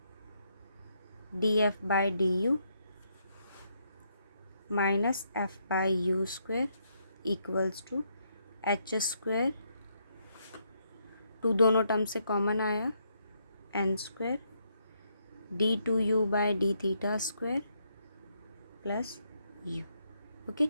d f by d u minus f by you square equals to H square, टू दोनों टर्म से कॉमन आया, n square d2u by D theta square plus u, okay.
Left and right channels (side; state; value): both; inverted; correlation -0.76